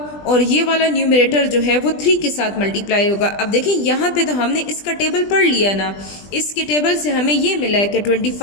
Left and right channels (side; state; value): right; late; 20 ms